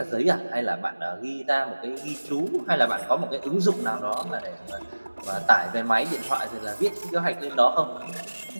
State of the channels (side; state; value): both; inverted; correlation -1.00